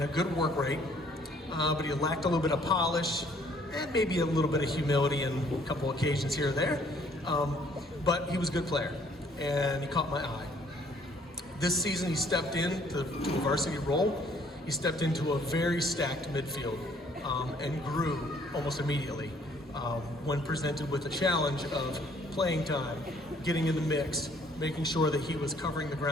a good work rate, but he lacked a little bit of polish and maybe a little bit of humility in a couple occasions here or there. But he was a good player, and he caught my eye. This season he stepped into a varsity role. He stepped into a very stacked midfield and grew almost immediately when presented with the challenge of playing time, getting in the mix, making sure that he was covering the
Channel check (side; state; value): both; normal; correlation 0.61